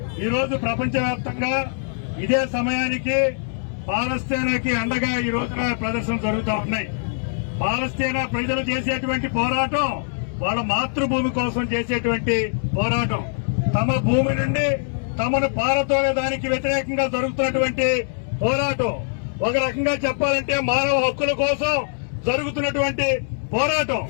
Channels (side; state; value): right; silent; 64 dB below the other